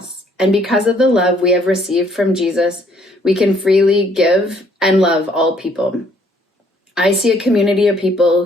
and because of the love we have received from Jesus, we can freely give and love all people. I see a community of people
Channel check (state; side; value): normal; both; correlation 0.64